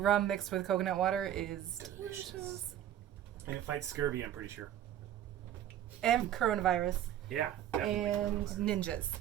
mixed with coconut water is delicious. And it fights scurvy, I'm pretty sure. And coronavirus. Yeah, definitely. And ninjas.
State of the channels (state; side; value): quieter; left; 11.4 dB